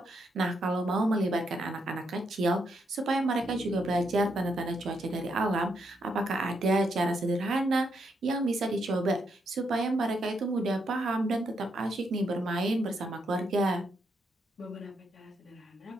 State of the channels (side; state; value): both; normal; correlation 0.79